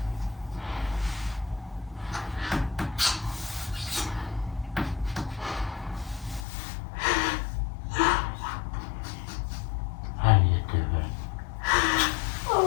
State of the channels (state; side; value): drops out; right; at 6.5 s